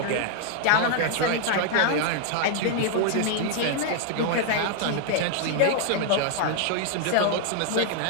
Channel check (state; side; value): different; both; correlation 0.00